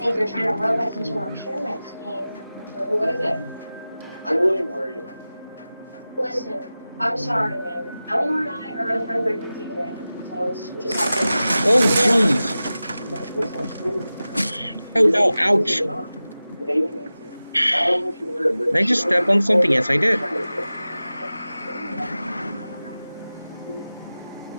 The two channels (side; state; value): both; inverted; correlation -0.96